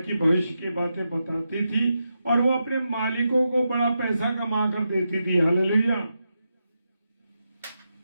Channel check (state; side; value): inverted; both; correlation -0.87